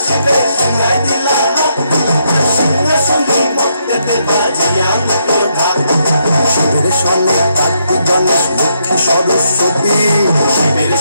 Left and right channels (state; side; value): inverted; both; correlation -0.77